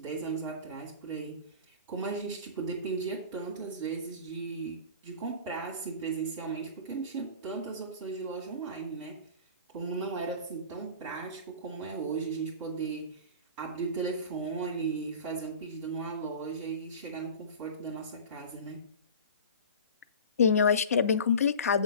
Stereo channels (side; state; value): both; inverted; correlation -0.36